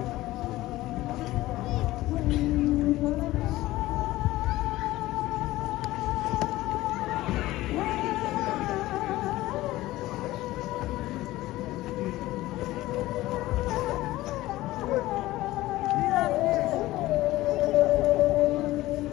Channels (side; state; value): right; quieter; 17.2 dB